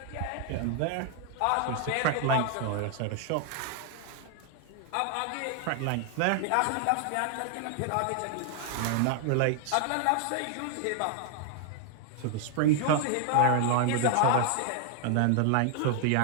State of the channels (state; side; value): different; both; correlation 0.00